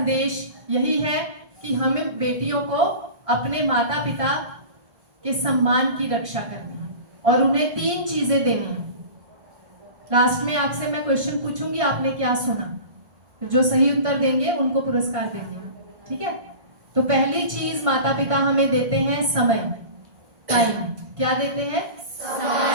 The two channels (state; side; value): late; left; 1.6 ms